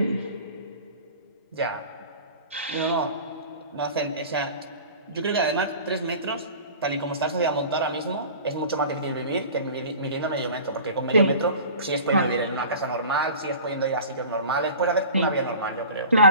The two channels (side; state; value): both; inverted; correlation -0.40